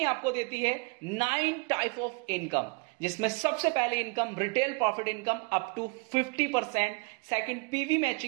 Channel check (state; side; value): quieter; left; 31.5 dB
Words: आपको देती है 9 टाइप ऑफ इनकम, जिसमें सबसे पहले income retail profit income up to 50%, second PV